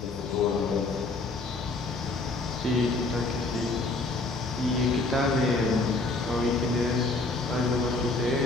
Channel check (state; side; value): quieter; right; 3.3 dB